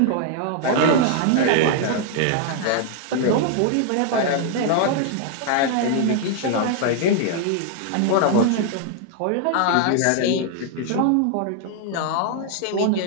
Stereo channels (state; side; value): different; both; correlation 0.00